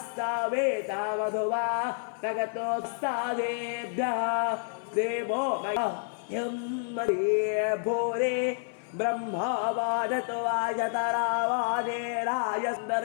मधुवा तगतोस्तादेभ्यः देवो मह्यं भूरे ब्रह्मावादतो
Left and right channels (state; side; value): silent; right; 58 dB below the other